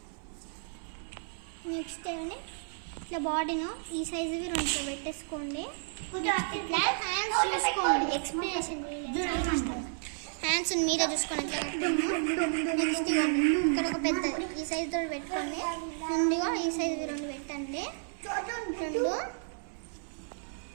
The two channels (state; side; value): silent; left; 56 dB below the other